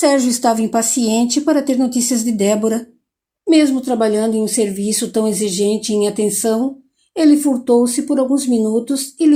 estava impaciente para ter notícias de Débora. Mesmo trabalhando em um serviço tão exigente em atenção, ele furtou-se por alguns minutos e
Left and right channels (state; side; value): identical; both; correlation 1.00